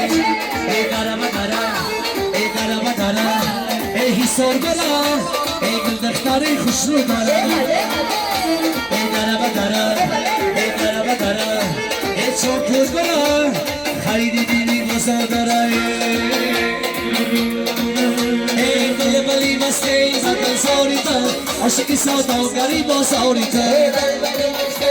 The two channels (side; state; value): right; noise; rumble, 29 dB below the sound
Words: قرم ای قرم ای حسار برا ای گل دختری خوش رو دارا ای قرم ای چوکور برا خریدی دیدی بازار دارا ای بلی مستی زدن ساری تا عشقی سوداگری بازاری تا